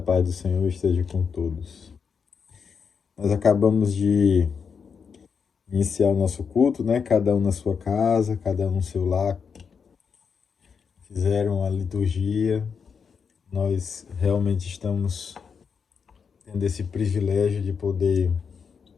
paz do Senhor esteja com todos. Nós acabamos de iniciar o nosso culto, né? Cada um na sua casa, cada um no seu lar. Fizeram a liturgia. Nós realmente estamos tendo esse privilégio de poder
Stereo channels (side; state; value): right; quieter; 6.2 dB